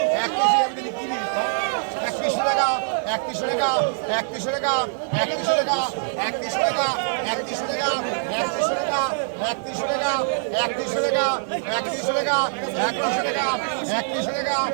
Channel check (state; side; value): silent; left; digital silence